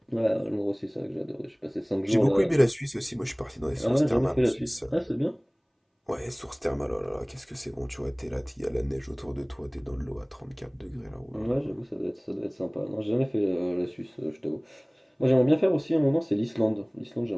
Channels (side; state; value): both; identical; correlation 1.00